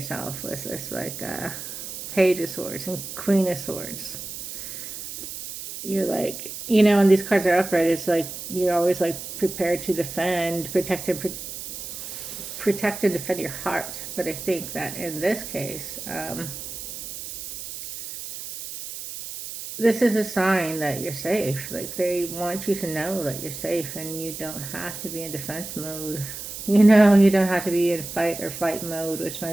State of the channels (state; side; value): noise; right; hiss, 9 dB below the sound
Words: with this like Page of Swords and Queen of Swords. You're like, when these cards are upright, it's like you're always like prepared to defend, protect and defend your heart. But I think that in this case, this is a sign that you're safe. Like they want you to know that you're safe and you don't have to be in defense mode. You don't have to be in fight or flight mode, which my